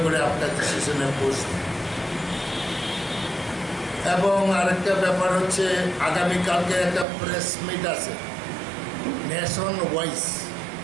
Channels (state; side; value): drops out; left; at 7.1 s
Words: করে আপনার ডিসিশনে বসব। এবং আরেকটা ব্যাপার হচ্ছে, আগামীকালকে একটা প্রেস মিট আছে নেশন ওয়াইজ।